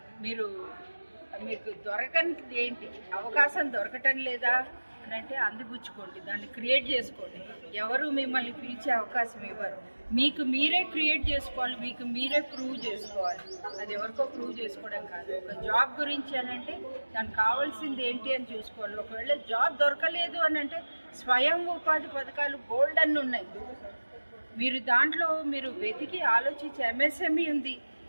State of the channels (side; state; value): both; inverted; correlation -1.00